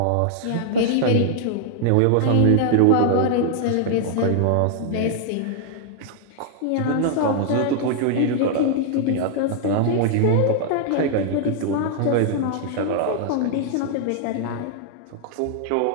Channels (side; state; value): both; different; correlation 0.00